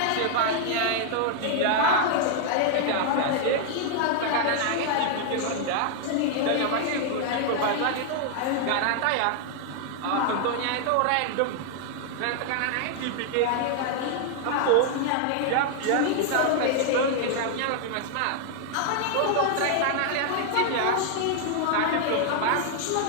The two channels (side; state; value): both; different; correlation 0.00